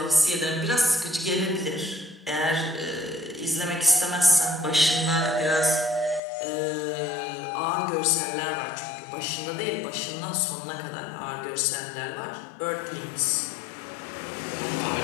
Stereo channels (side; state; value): right; drops out; at 6.2 s